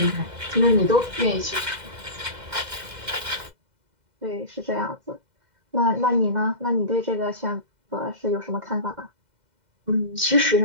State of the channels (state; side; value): late; left; 2.0 ms